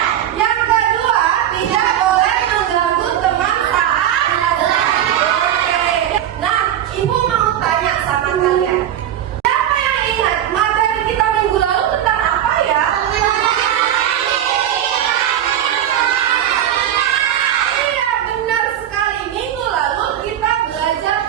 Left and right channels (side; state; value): left; quieter; 11.0 dB